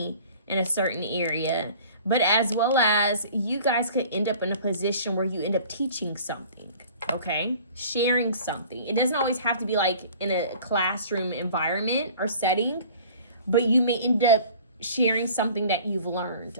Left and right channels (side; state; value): both; inverted; correlation -0.47